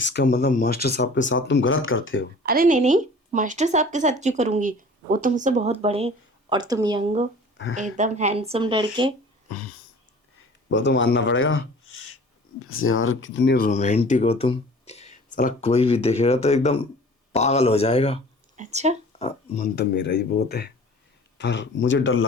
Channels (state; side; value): normal; both; correlation 0.46